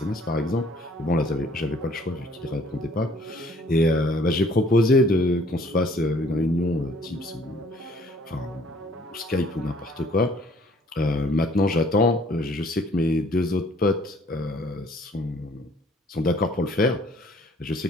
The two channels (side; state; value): both; normal; correlation 0.59